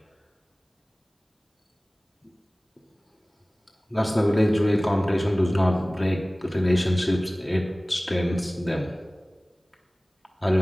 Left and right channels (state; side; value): normal; both; correlation 0.98